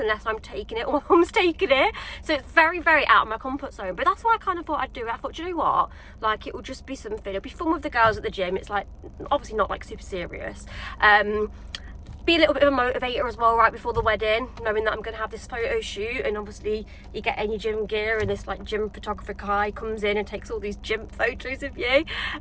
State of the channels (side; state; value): both; identical; correlation 1.00